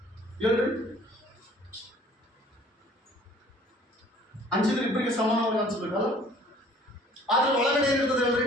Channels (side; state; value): both; normal; correlation 0.54